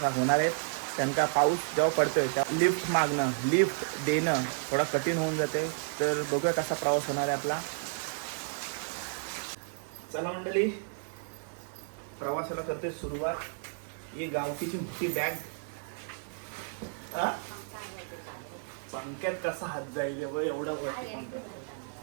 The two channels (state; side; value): silent; left; 57 dB below the other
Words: होणार आहेत. कारण का पाऊस जेव्हा पडतोय तेव्हा लिफ्ट मागणं, लिफ्ट देणं थोडा कठीण होऊन जाते. तर बघूया कसा प्रवास होणार आहे आपला. चला मंडळी, प्रवासाला करते सुरुवात. ही गावकीची मोठी बॅग. पंख्यात कसा हात जाईल एवढा